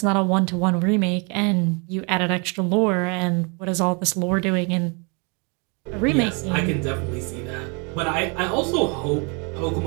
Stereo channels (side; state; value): left; quieter; 33.3 dB